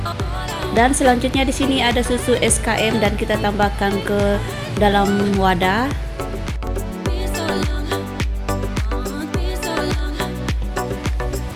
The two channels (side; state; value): both; identical; correlation 1.00